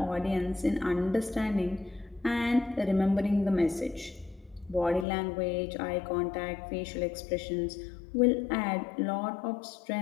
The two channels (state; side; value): drops out; right; at 5.1 s